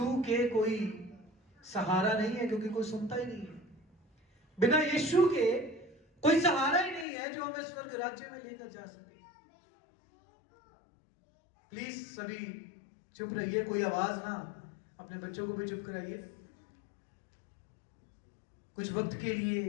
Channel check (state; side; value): drops out; right; at 7.1 s